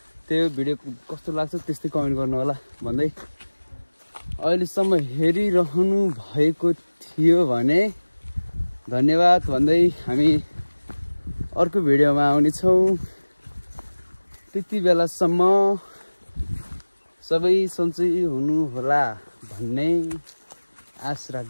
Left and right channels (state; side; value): inverted; both; correlation -1.00